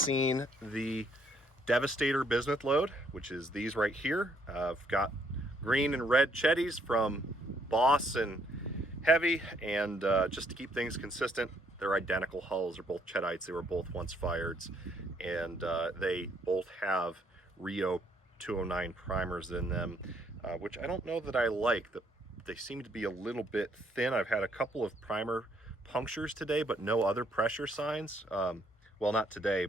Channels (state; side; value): normal; both; correlation 0.69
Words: the Devastator Bismuth Load, which is these right here. I've got green and red Cheddies from Boss and Heavy, and just to keep things consistent, they're identical hulls. They're both Cheddites. They were both once fired, and they both have Rio 209 primers in them, which I don't know that I like. They seem to be a little bit thin. I've had a couple of primer punctures today, but no other pressure signs. Well, not today,